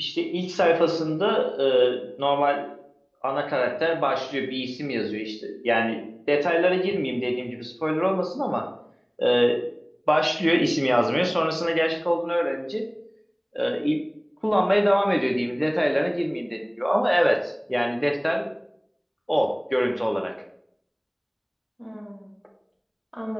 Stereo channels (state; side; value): identical; both; correlation 1.00